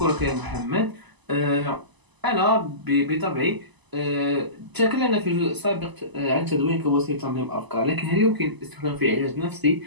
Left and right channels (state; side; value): late; left; 1.0 ms